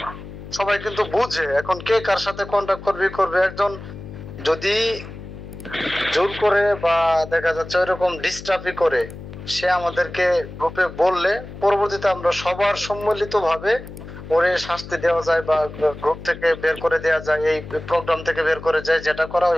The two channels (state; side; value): noise; left; hum, 13 dB below the sound